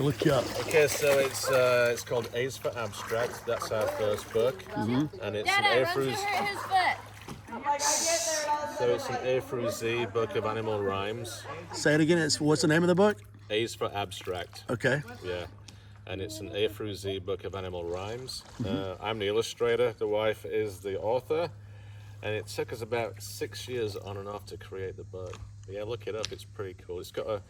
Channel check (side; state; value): both; identical; correlation 1.00